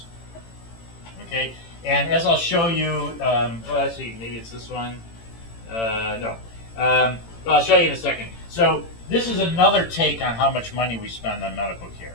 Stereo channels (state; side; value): late; right; 18 ms